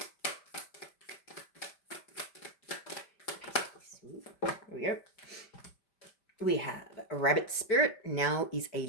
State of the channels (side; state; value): right; late; 5.1 ms